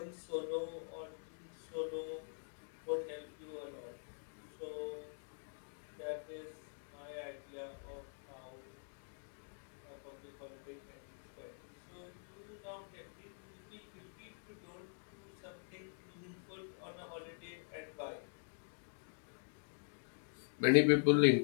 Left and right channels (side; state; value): right; silent; digital silence